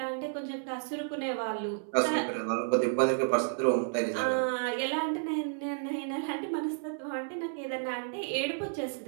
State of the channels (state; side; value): silent; left; 57 dB below the other